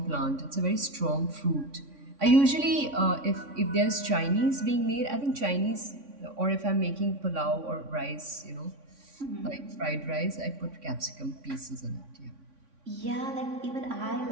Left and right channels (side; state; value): left; late; 3.5 ms